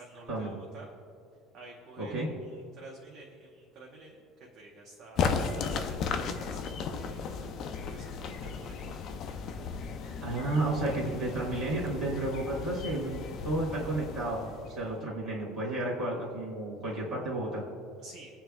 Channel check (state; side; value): normal; both; correlation 0.42